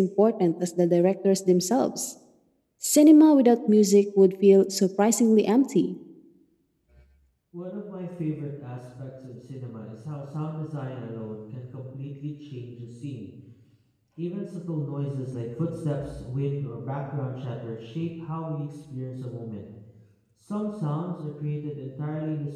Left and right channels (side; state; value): both; identical; correlation 1.00